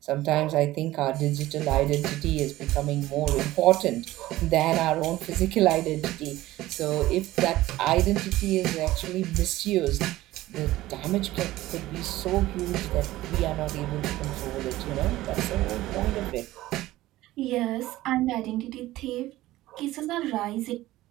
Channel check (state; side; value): quieter; left; 16.5 dB